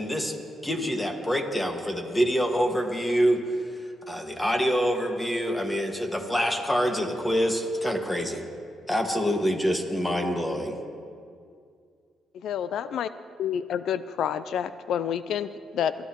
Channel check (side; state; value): both; normal; correlation 0.84